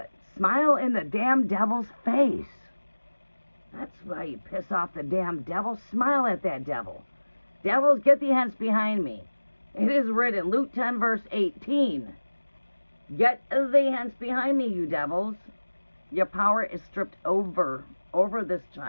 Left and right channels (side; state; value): both; inverted; correlation -1.00